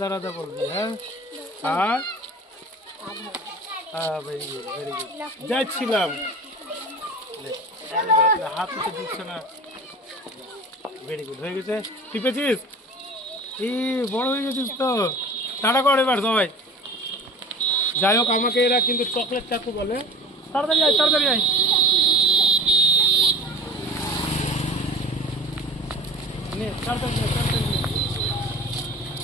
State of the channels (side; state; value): both; normal; correlation 0.42